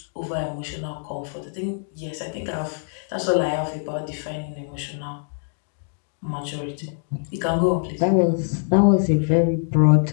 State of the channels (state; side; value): silent; right; digital silence